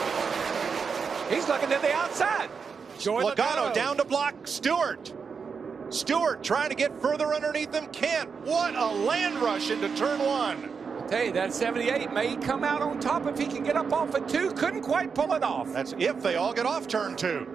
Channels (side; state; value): left; quieter; 5.7 dB